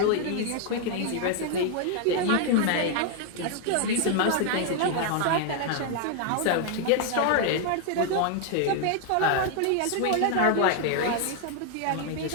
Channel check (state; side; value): different; both; correlation 0.00